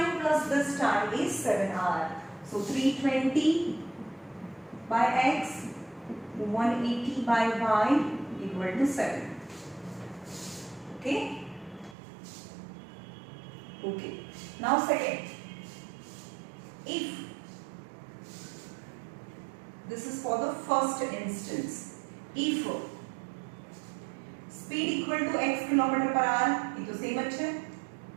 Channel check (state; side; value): drops out; left; at 12.0 s